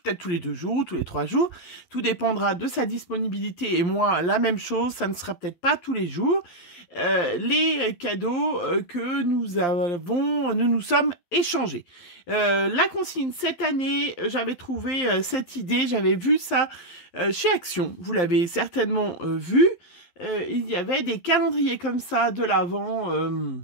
tous les 2 jours ou tous les 3 jours. Tout dépendra de sa disponibilité et moi la même chose, ça ne sera peut-être pas tous les jours. Les cadeaux que nous nous sommes échangés. La consigne cette année, j'avais trouvé cette idée, j'avais vu ça chez Action, vous l'avez certainement vu. Il y avait des calendriers comme ça de l'Avent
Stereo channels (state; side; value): late; right; 11 ms